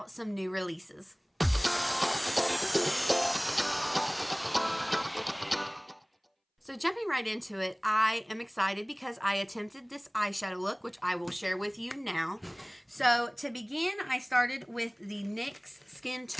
some new releases. So jumping right into it, I am excited because I attempted this eyeshadow look, which I will share with you now. So to begin, I started with the NYX Skin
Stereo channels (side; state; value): both; identical; correlation 1.00